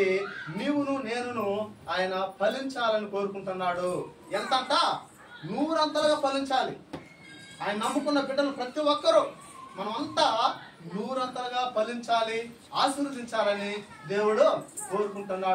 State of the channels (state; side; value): identical; both; correlation 1.00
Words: నీవును నేనును ఆయన ఫలించాలని కోరుకుంటున్నాడు. ఎంతంట 100 ఫలించాలి. ఆయన నమ్ముకున్న బిడ్డలు ప్రతి ఒక్కరూ మనమంతా 100 ఫలించాలి, ఆశీర్వదించాలని దేవుడు